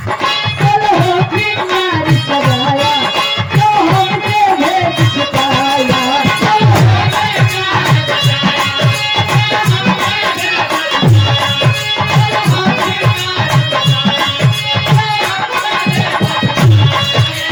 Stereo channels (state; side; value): identical; both; correlation 1.00